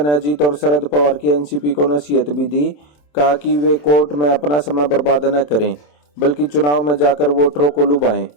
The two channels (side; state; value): right; late; 27 ms